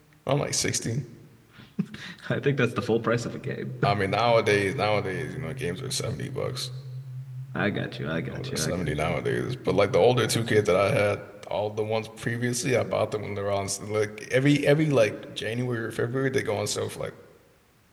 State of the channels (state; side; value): identical; both; correlation 1.00